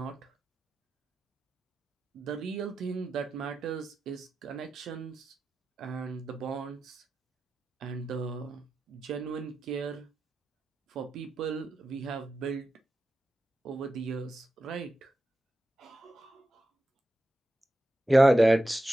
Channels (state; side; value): normal; both; correlation 0.91